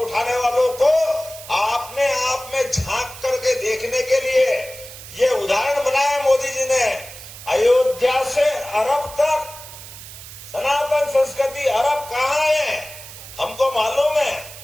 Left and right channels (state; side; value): noise; right; hiss, 15 dB below the sound